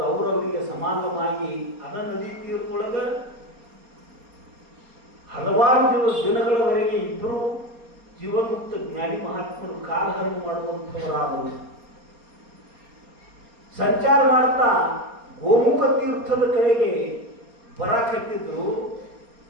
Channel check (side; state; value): left; late; 4.3 ms